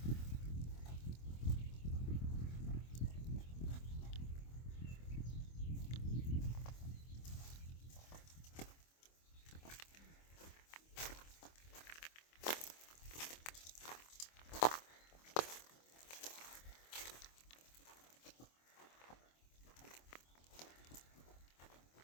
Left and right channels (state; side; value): late; right; 25 ms